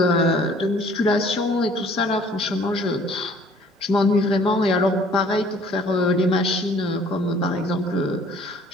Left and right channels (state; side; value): normal; both; correlation 0.55